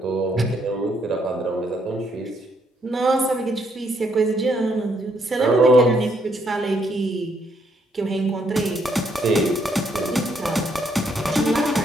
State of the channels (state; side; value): normal; both; correlation 0.72